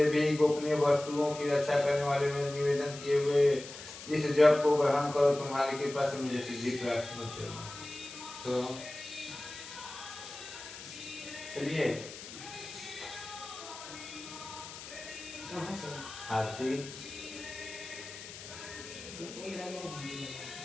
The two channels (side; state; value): left; noise; hiss, 13 dB below the sound